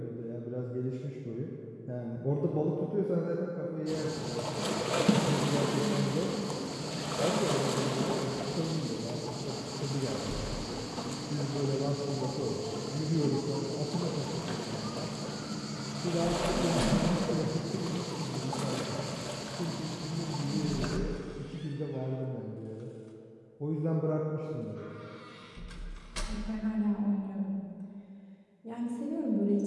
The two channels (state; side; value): identical; both; correlation 1.00